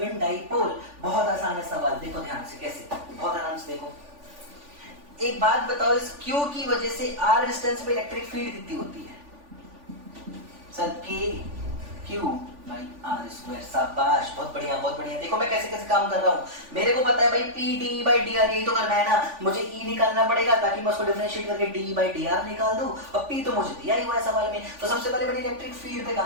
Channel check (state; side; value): late; left; 3.5 ms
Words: dipole. बहुत आसान है सवाल, देखो ध्यान से कैसे, बहुत आराम से देखो। एक बात बताओ, इस q की वजह से r डिस्टेंस पे इलेक्ट्रिक फील्ड कितनी होती है? सर q भाई आर स्क्वायर। शाबाश, बहुत बढ़िया। देखो मैं कैसे काम कर रहा हूँ। मेरे को पता है भाई P d by dr, यही तो करना है ना। मुझे E निकालना पड़ेगा ताकि मैं उसको डिफरेंशिएट करके d by dr निकाल दूं, और P तो मुझे दिया ही हुआ है सवाल में। तो सबसे पहले मैंने इलेक्ट्रिक फील्ड पे